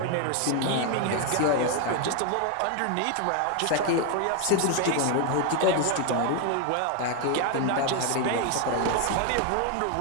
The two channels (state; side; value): different; both; correlation 0.01